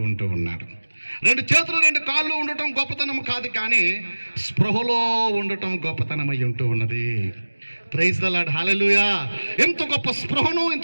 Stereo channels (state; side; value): inverted; both; correlation -1.00